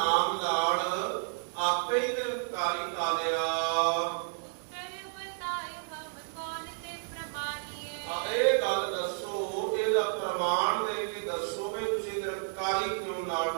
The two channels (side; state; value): left; silent; digital silence